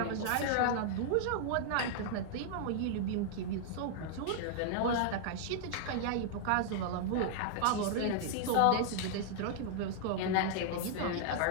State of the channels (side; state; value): both; different; correlation -0.01